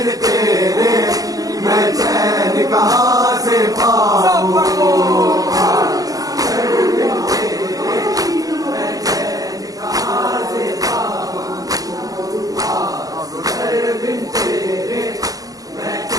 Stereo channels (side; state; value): left; late; 0.17 ms